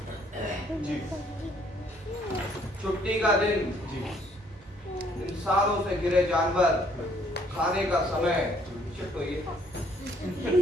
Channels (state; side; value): normal; both; correlation 0.63